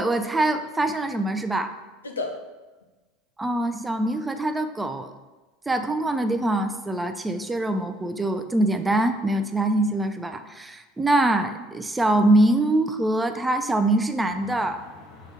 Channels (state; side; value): normal; both; correlation 0.73